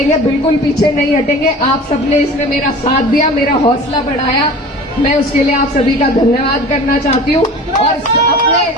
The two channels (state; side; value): normal; both; correlation 0.39